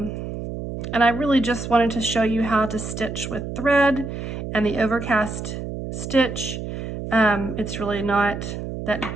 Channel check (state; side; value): noise; right; hum, 6 dB below the sound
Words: I really just wanted to show you how to stitch with thread and the Overcast stitch. It's really not that